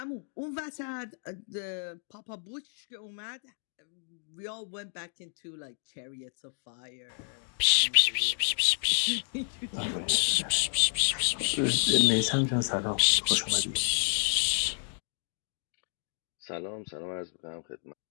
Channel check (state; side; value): silent; right; digital silence